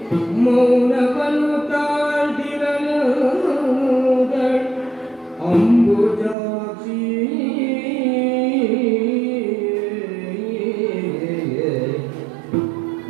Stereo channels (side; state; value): left; drops out; at 6.4 s